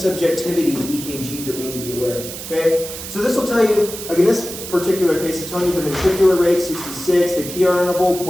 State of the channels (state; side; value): noise; right; hiss, 10 dB below the sound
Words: in EKGs that we need to be aware of, okay? So this will tell you, like in this particular case, it's telling you the ventricular rate, 66, the PR interval,